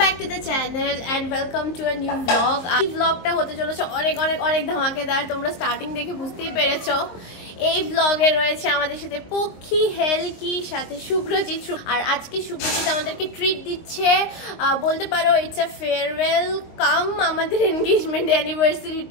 back to the channel and welcome to a new vlog. এই ব্লগটা হতে চলেছে অনেক অনেক অনেক ধামাকেদার। তোমরা স্টার্টিং দেখে বুঝতেই পেরেছো। এই ব্লগে রয়েছে আমাদের সাথে পক্ষী, হেলকি, সাথে শুভ্রজিৎ। আর আজকে শুভ্রজিৎ আমাদেরকে ট্রিট দিচ্ছে, বলতে পারো ইটস আ ফেয়ারওয়েল কাম আমাদের এনগেজমেন্ট অ্যানিভার্সারি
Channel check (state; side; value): late; right; 23 ms